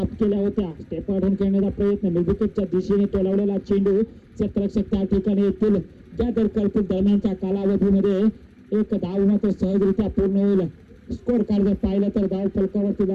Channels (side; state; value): both; identical; correlation 1.00